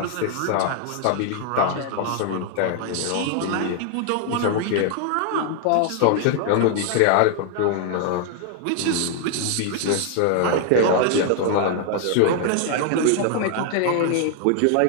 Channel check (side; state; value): both; different; correlation 0.00